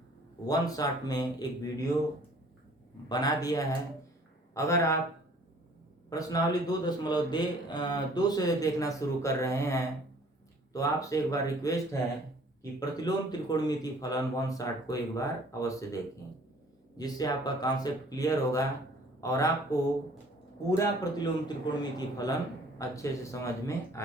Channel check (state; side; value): normal; both; correlation 0.54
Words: वन शॉट में एक वीडियो बना दिया है। अगर आप प्रश्नावली 2.2 से देखना शुरू कर रहे हैं तो आपसे एक बार रिक्वेस्ट है कि प्रतिलोम त्रिकोणमितीय फलन वन शॉट को एक बार अवश्य देखें, जिससे आपका कॉन्सेप्ट क्लियर होगा और आपको पूरा प्रतिलोम त्रिकोणमितीय फलन अच्छे से समझ में